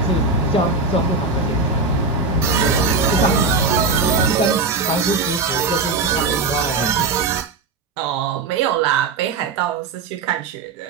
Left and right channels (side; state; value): left; quieter; 4.0 dB